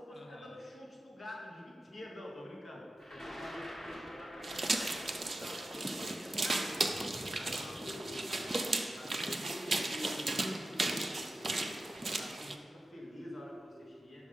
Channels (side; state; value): both; normal; correlation 0.93